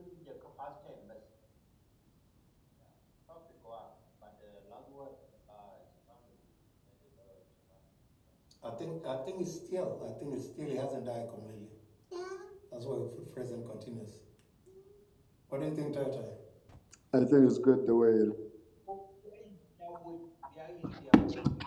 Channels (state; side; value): identical; both; correlation 1.00